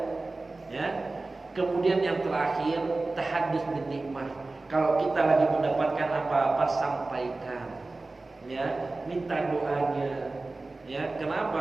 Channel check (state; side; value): quieter; left; 3.3 dB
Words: Ya. Kemudian yang terakhir, tahaddus bin nikmah. Kalau kita lagi mendapatkan apa-apa, sampaikan, ya, minta doanya, ya.